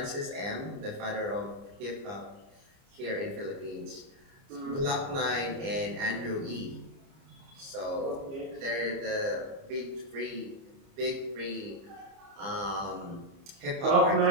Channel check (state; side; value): late; left; 30 ms